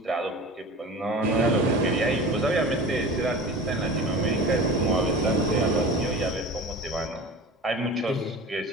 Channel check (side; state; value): both; normal; correlation 0.35